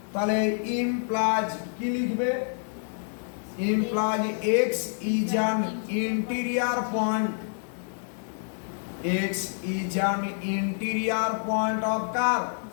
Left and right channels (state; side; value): silent; right; digital silence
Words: তাহলে ইমপ্লাইজ কি লিখবে? Implies x is an interior point. X is an interior point of কার?